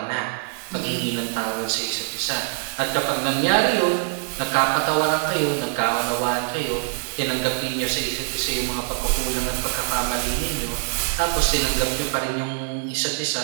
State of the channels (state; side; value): silent; left; 59 dB below the other